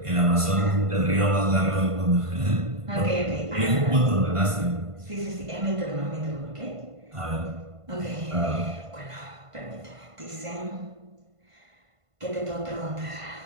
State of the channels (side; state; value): left; late; 1.5 ms